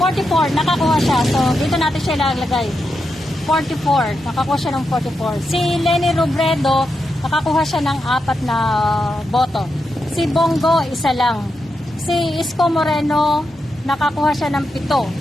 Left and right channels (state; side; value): normal; both; correlation 0.86